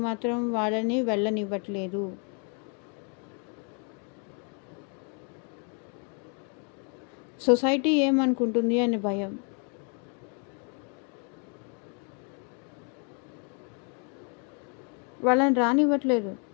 మాత్రం వాళ్ళని వెళ్ళనివ్వట్లేదు. సొసైటీ ఏమనుకుంటుంది అని భయం. వాళ్ళని రానివ్వట్లేదు.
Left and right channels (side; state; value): right; quieter; 39.4 dB